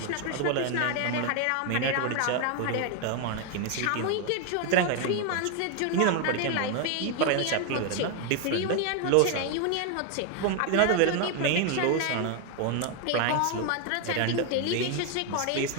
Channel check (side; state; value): both; different; correlation 0.01